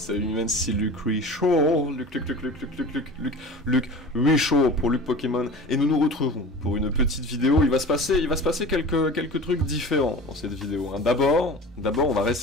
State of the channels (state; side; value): normal; both; correlation 0.37